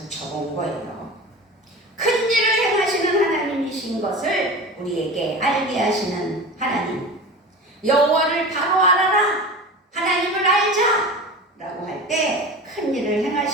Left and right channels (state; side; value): normal; both; correlation 0.32